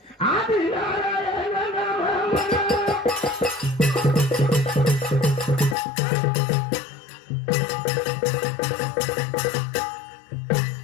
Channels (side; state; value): right; drops out; at 5.8 s